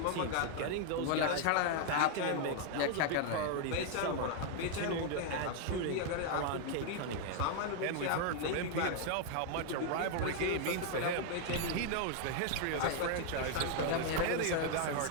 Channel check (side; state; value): both; different; correlation 0.00